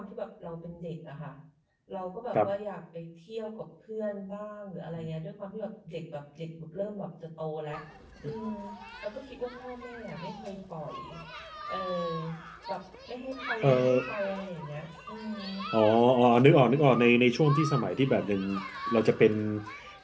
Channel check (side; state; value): both; identical; correlation 1.00